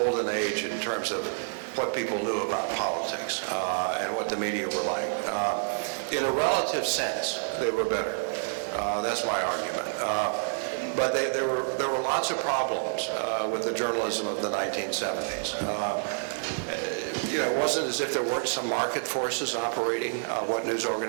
age in terms of what people knew about politics and what the media were like. In a relative sense, they were better. That's my argument. But there were lots of problems with the journalism of the 1970s. It wasn't as if there weren't some market forces operating what news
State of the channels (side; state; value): left; silent; digital silence